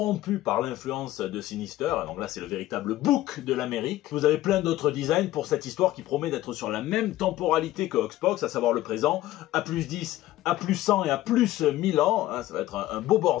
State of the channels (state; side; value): quieter; right; 15.3 dB